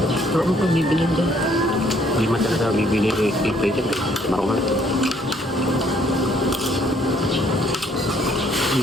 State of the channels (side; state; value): both; normal; correlation 0.65